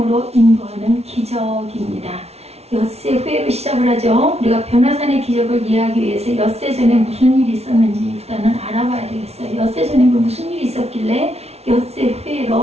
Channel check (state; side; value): late; left; 0.31 ms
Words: 인도하는 기적입니다. 엿새 후에로 시작을 하죠. 우리가 변화산의 기적을 이해하기 위해서 엿새 전에 무슨 일이 있었는지 일단은 알아봐야 되겠어요. 엿새 전에 무슨 일이 있었길래 엿새